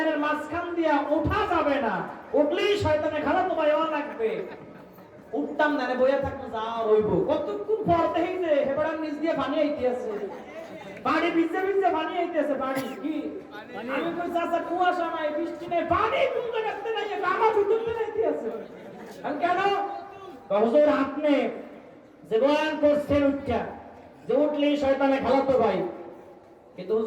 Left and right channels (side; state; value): both; identical; correlation 1.00